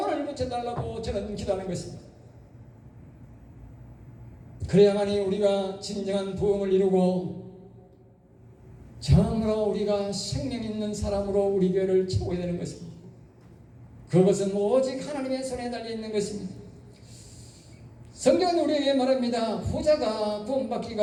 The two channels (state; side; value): identical; both; correlation 1.00